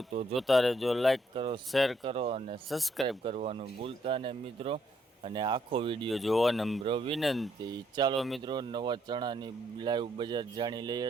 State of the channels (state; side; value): normal; both; correlation 0.72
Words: તો જોતા રહેજો, લાઈક કરો, શેર કરો અને સબસ્ક્રાઈબ કરવાનું ભૂલતા નહીં મિત્રો। અને આખો વિડીયો જોવા નમ્ર વિનંતી। ચાલો મિત્રો, નવા ચણાની લાઈવ બજાર જાણી લઈએ।